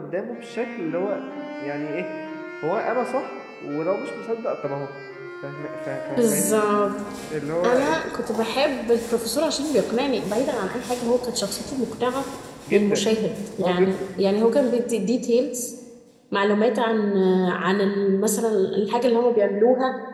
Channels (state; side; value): identical; both; correlation 1.00